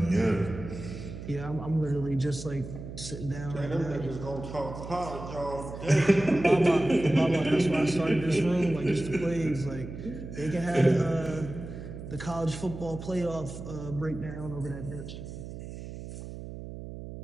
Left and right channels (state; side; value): noise; right; hum, 10 dB below the sound